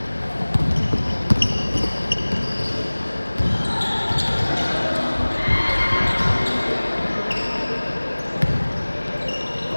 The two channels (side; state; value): both; inverted; correlation -1.00